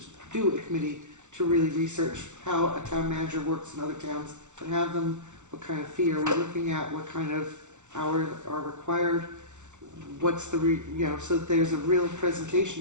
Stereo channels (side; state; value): left; late; 0.84 ms